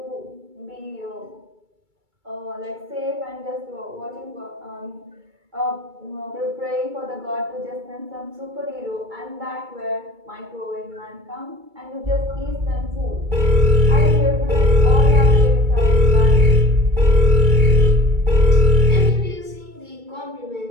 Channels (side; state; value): left; late; 2.3 ms